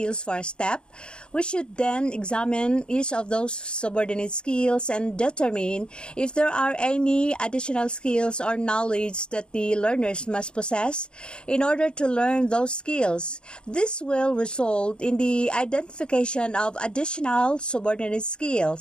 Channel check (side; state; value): right; late; 0.052 ms